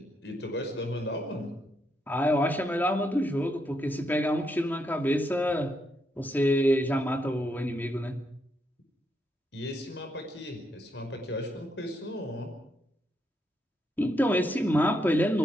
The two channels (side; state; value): both; normal; correlation 0.79